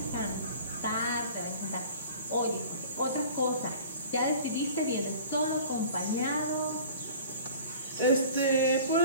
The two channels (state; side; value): inverted; both; correlation -0.44